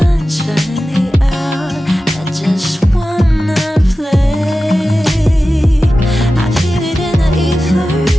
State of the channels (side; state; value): both; normal; correlation 0.94